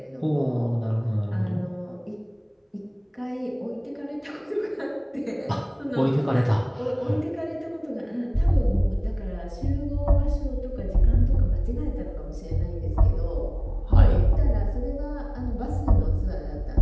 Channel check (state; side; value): identical; both; correlation 1.00